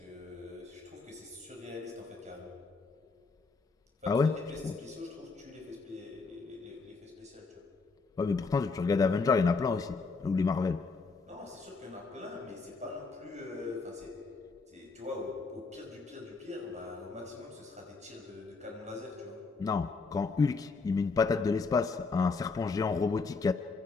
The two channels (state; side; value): quieter; right; 4.3 dB